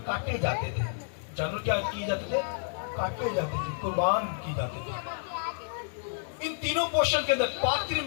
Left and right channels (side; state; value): right; silent; digital silence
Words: کاٹے جاتے تھے. جانور کیا کیے جاتے تھے؟ کاٹے جاتے تھے, قربان کی جاتے تھے. ان تینوں پورشن کے اندر پاک ترین